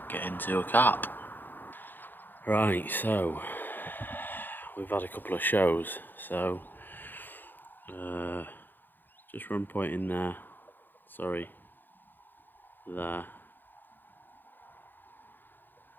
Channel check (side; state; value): right; late; 0.091 ms